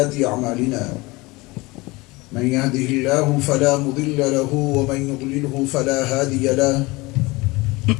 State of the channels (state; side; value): quieter; right; 22.9 dB